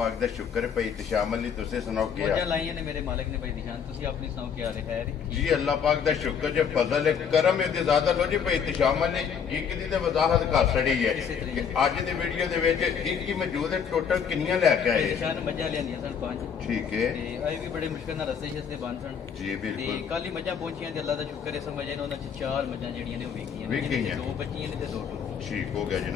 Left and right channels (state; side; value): quieter; right; 7.2 dB